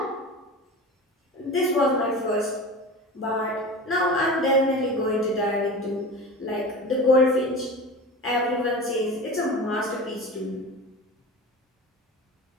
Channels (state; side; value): normal; both; correlation 0.32